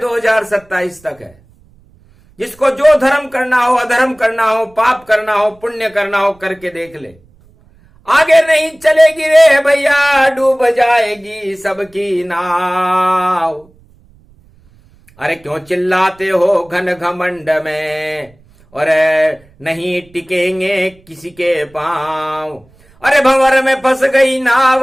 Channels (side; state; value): right; noise; rumble, 30 dB below the sound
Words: तक है। जिसको जो धर्म करना हो, अधर्म करना हो, पाप करना हो, पुण्य करना हो, करके देख ले। आगे नहीं चलेगी रे भैया, डूब जाएगी सबकी नाव। अरे क्यों चिल्लाते हो घन घमंड में, और नहीं टिकेंगे किसी के पांव। अरे भंवर में फंस गई